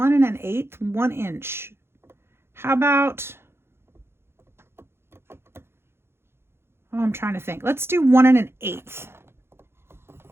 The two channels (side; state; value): left; late; 0.12 ms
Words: 1/8, 1 inch. How about, I'm trying to think. Let's do 1 1/8.